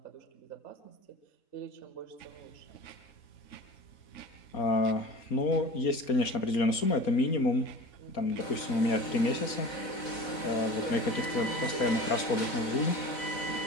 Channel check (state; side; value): late; right; 4.2 ms